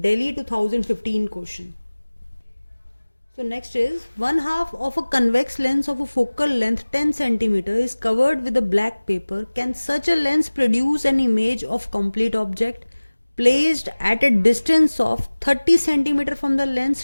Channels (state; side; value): inverted; both; correlation -1.00